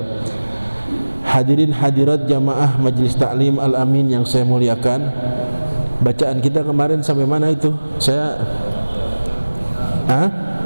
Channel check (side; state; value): both; inverted; correlation -1.00